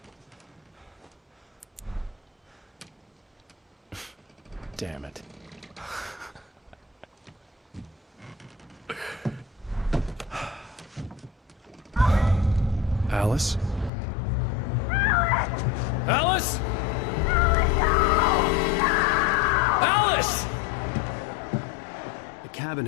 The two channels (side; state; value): right; drops out; at 13.9 s